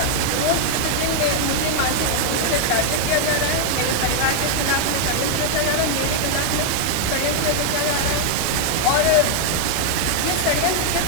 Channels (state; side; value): different; both; correlation 0.00